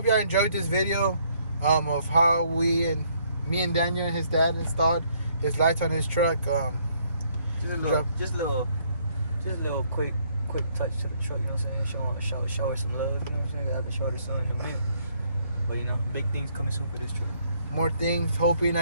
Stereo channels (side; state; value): both; inverted; correlation -0.67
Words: y'all enjoyed this video of how me and Daniel and his dad installed his lights on his truck. Just a little quick touch to the truck, you know what I'm saying? Show her some love, you know what I'm saying? I haven't showed her something in a minute. But you know, big things coming soon for this truck. More things, hoping